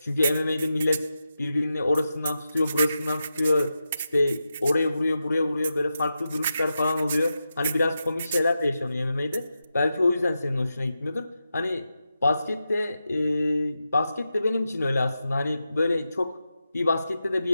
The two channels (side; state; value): both; inverted; correlation -0.89